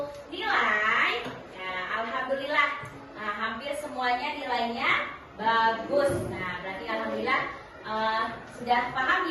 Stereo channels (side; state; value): both; identical; correlation 1.00